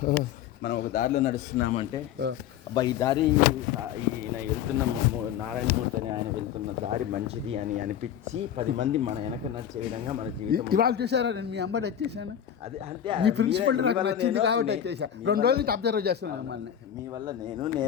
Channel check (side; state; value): right; quieter; 9.7 dB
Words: ఒక దారిలో నడుస్తున్నామంటే అబ్బా ఈ దారి ఈయన వెళ్తున్న నారాయణమూర్తి అని ఆయన వెళ్తున్న దారి మంచిది అని అనిపించి 10 మంది మన వెనక నడిచే విధంగా మన జీవితం. ఇవాళ చూసారా, నేను మీ అమ్మాయి వచ్చేసాను. అది అంటే ఈ ప్రిన్సిపల్ నాకు నచ్చింది కాబట్టి వచ్చేసా. 2 రోజుల నుంచి అబ్జర్వ్ చేస్తున్నాను మిమ్మల్ని. మీ వల్ల